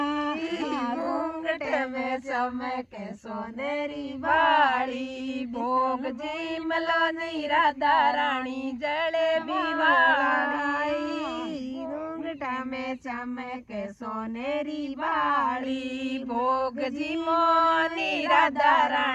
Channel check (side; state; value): both; identical; correlation 1.00